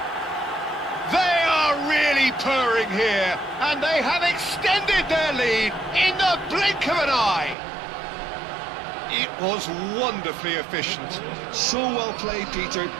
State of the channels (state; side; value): drops out; left; at 7.6 s